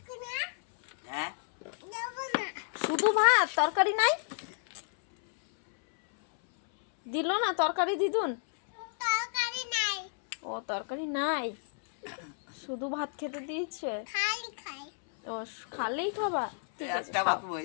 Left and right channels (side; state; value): right; silent; 57 dB below the other